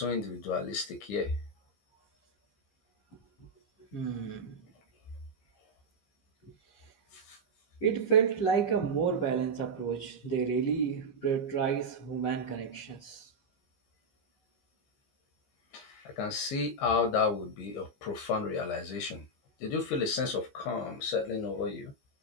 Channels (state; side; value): late; right; 15 ms